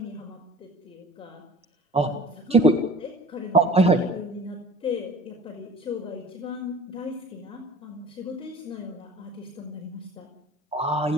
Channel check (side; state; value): both; normal; correlation 0.44